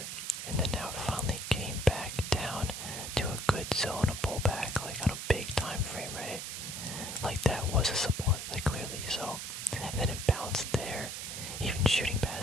And then now it finally came back down to a good zone, a pullback, like on a big time frame, right? Like that was a support, like clearly. So, and then it bounced there, even shooting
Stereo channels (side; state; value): right; noise; hiss, 6 dB below the sound